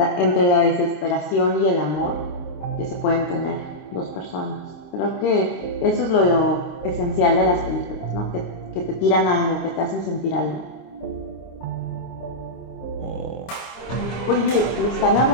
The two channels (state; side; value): late; right; 26 ms